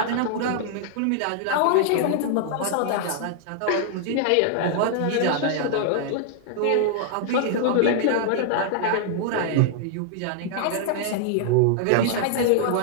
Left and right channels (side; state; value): both; different; correlation -0.01